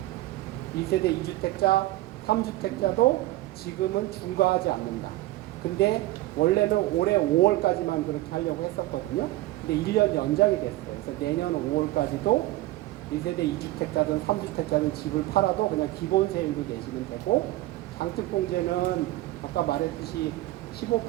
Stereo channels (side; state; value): left; quieter; 17.2 dB